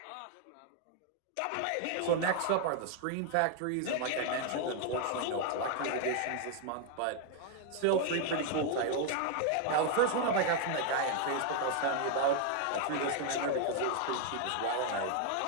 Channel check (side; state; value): both; different; correlation 0.00